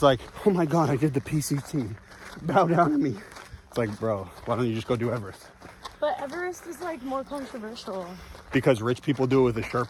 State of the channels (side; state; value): both; identical; correlation 1.00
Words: like, oh my God, I did the PCT. Bow down to me. It's like, bro, why don't you just go do Everest? But Everest is like more controversial. Because rich people do it with a